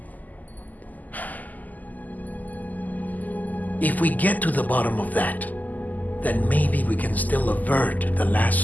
If we get to the bottom of that, then maybe we can still avert the last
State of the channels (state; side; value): late; right; 0.081 ms